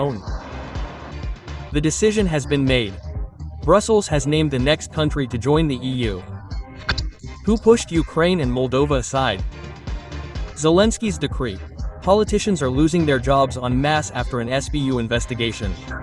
The decision has been made. Brussels has named the next country to join the EU. Who pushed Ukraine and Moldova aside? Zelensky's decree. Politicians are losing their jobs en masse after an SBU investigation.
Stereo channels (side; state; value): both; identical; correlation 1.00